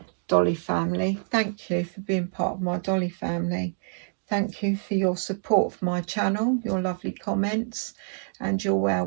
Dolly family, thank you for being part of my Dolly family. Thank you for your support of my channel, your lovely comments and your well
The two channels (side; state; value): left; silent; digital silence